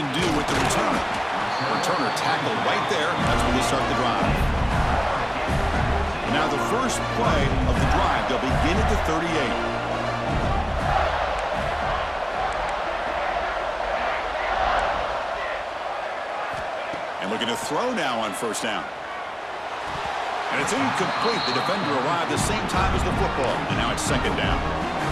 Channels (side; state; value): both; identical; correlation 1.00